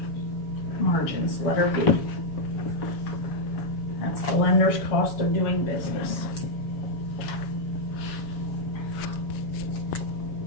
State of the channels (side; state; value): right; late; 6.7 ms